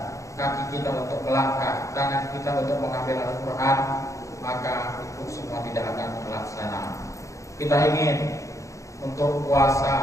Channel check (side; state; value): right; late; 0.15 ms